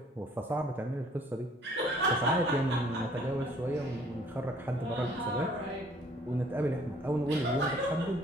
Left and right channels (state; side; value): normal; both; correlation 0.58